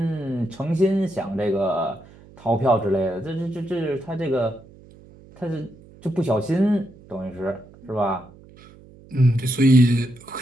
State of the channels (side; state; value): right; noise; hum, 23 dB below the sound